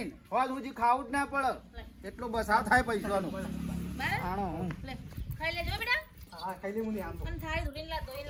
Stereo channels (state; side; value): identical; both; correlation 1.00